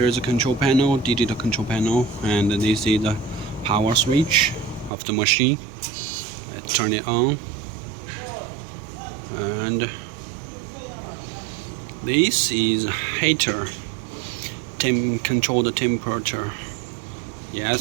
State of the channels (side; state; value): left; drops out; at 4.9 s